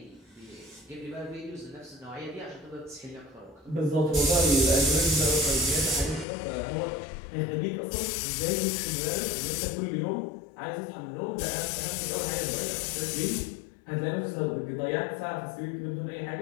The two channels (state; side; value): drops out; right; at 6.2 s